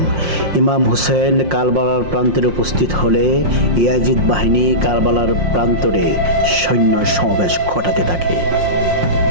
ইমাম হুসেন কারবালার প্রান্তরে উপস্থিত হলে ইয়াজিদ বাহিনী কারবালার প্রান্তরে সৈন্য সমাবেশ ঘটাতে থাকে।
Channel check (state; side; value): late; left; 5.6 ms